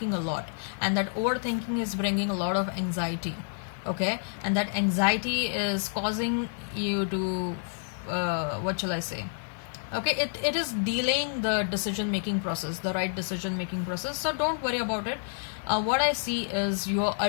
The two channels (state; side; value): silent; right; digital silence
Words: a lot, and that overthinking is bringing a lot of anxiety. Okay, and that anxiety is causing you to what shall I say, okay, it is delaying the decision making process, the right decision making process. So don't worry about it. What I see is your